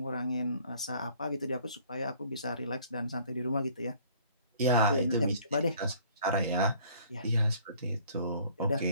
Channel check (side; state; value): both; inverted; correlation -0.56